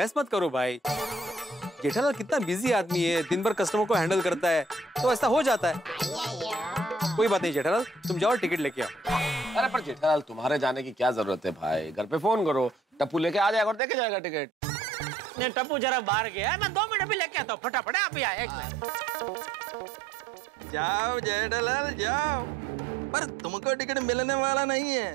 मत करो भाई। जेठालाल कितना बिजी आदमी है, दिन भर कस्टमर को हैंडल करता है, तो ऐसा हो जाता है। कोई बात नहीं जेठालाल, तुम जाओ टिकट लेके आओ। अरे पर जेठालाल, तुम्हारे जाने की क्या जरूरत है भाई, घर पे फोन करो, टप्पू लेके आ जाएगा और देके जाएगा टिकट। नहीं टप्पू जरा बाहर गया है, मैं 2 मिनट भी लेके आता हूँ, फटाफट आप ही आए। एक मिनट। जाओ जेठालाल जाओ, पर तुमको टिकट मिलने वाला नहीं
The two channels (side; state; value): left; drops out; at 13.8 s